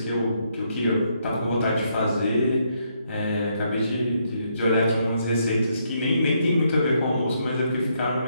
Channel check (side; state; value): both; inverted; correlation -0.75